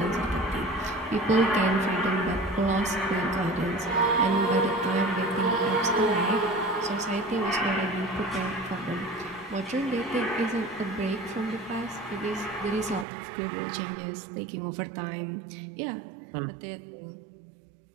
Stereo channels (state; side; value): drops out; left; at 13.1 s